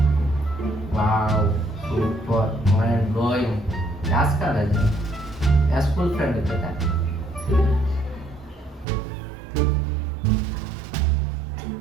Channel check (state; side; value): drops out; left; at 8.8 s